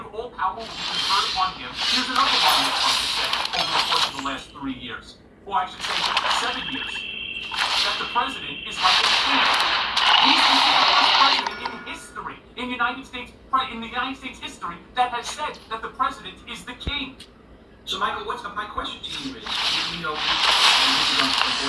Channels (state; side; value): identical; both; correlation 1.00